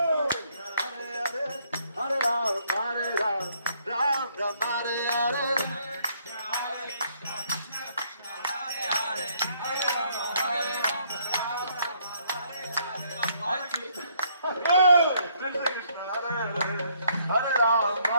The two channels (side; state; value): both; inverted; correlation -0.68